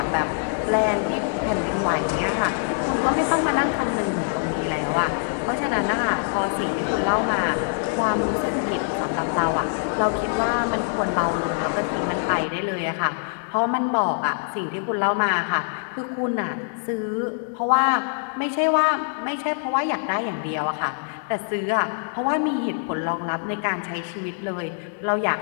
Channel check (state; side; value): silent; right; 63 dB below the other